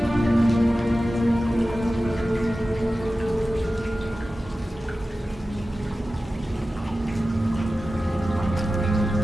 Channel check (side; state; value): both; normal; correlation 0.95